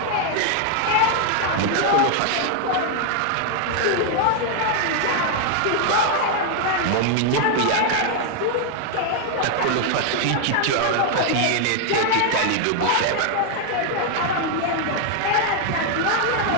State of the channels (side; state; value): both; different; correlation 0.00